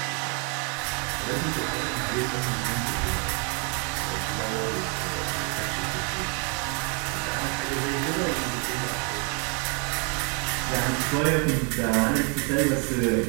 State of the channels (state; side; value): quieter; left; 35.8 dB